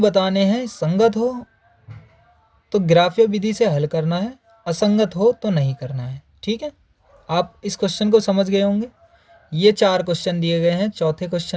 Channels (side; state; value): both; identical; correlation 1.00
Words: बताने हैं, संगत हो तो ग्राफ्य विधि से हल करना है, असंगत हो तो नहीं करना है। ठीक है, आप इस क्वेश्चन को समझ गए होंगे। ये 4 क्वेश्चन दिए गए हैं। चौथे